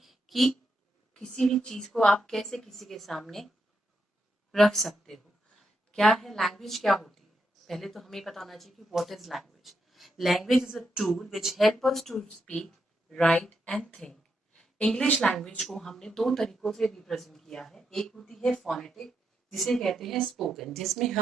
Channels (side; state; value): both; normal; correlation 0.82